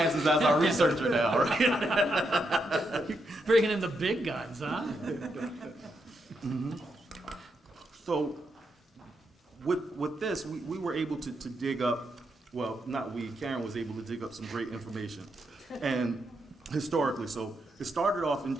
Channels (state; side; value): normal; both; correlation 0.81